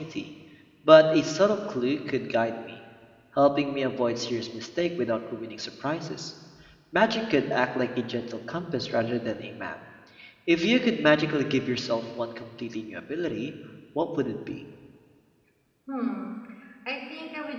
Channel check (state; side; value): identical; both; correlation 1.00